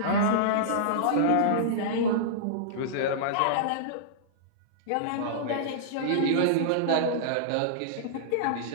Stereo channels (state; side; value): different; both; correlation -0.02